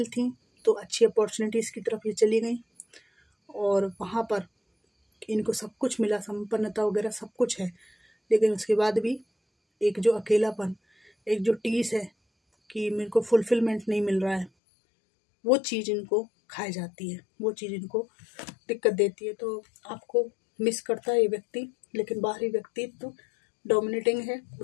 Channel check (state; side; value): drops out; right; at 14.5 s